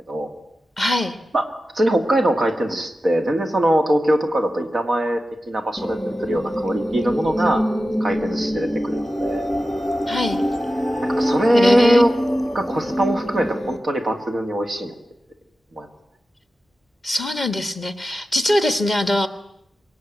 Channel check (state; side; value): normal; both; correlation 0.93